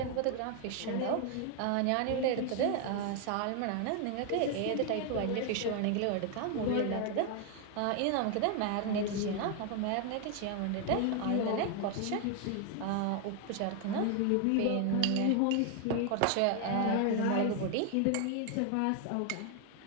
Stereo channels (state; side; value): different; both; correlation 0.01